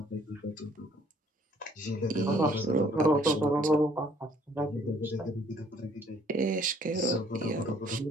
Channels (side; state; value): both; normal; correlation 0.61